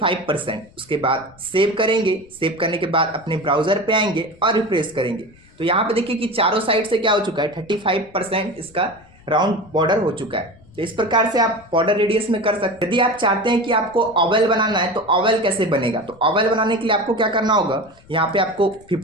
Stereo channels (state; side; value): noise; left; rumble, 27 dB below the sound